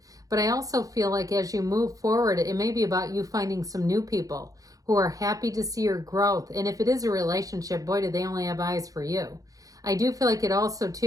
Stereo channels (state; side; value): late; left; 0.17 ms